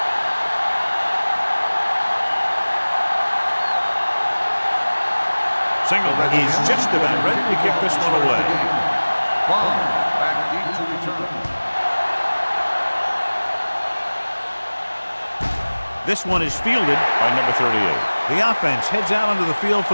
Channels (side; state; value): both; inverted; correlation -1.00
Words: Single is just about ready to kick this one away. Ball back deep to return. This one is fielded by number 38. The offense heads out onto the field for